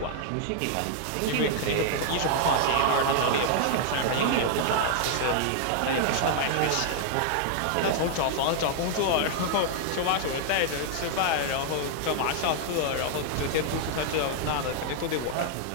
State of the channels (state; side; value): different; both; correlation -0.01